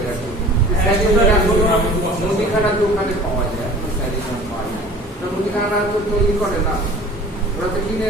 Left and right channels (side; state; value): both; normal; correlation 0.45